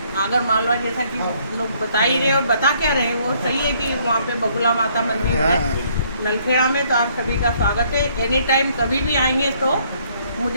आगर मालवा जैसा कि लोग बता ही रहे और बता क्या रहे, वो सही है कि वहाँ पे बगुला माता मंदिर है नलखेड़ा में, तो आप सभी का स्वागत है। एनी टाइम कभी भी आएंगे तो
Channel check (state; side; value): inverted; both; correlation -0.65